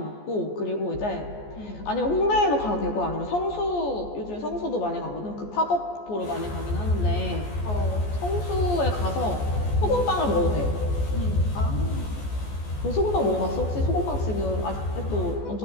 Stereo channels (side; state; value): right; late; 14 ms